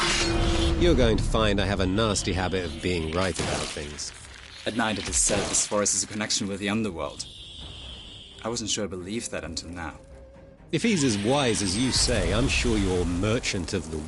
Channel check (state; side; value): identical; both; correlation 1.00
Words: You're going to find I have a nasty habit of being right about things. At night it is said this forest has a connection with the underworld. I wasn't sure I believed that until now. If he's as wise as you say, I'm sure your merchant of the